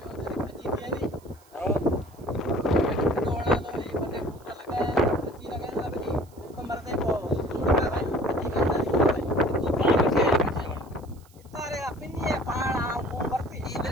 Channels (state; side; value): noise; right; hiss, 29 dB below the sound